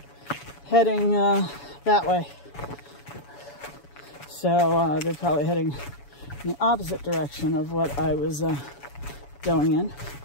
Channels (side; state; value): right; late; 7.1 ms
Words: heading that way. So they're probably heading in the opposite direction of what I was going in.